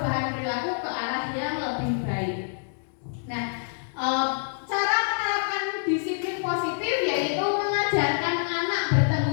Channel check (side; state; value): right; silent; digital silence